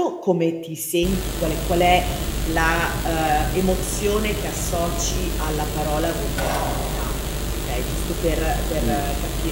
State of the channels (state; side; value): identical; both; correlation 1.00